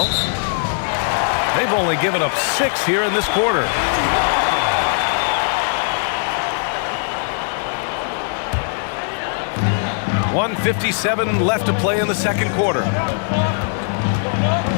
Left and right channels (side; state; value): right; silent; 66 dB below the other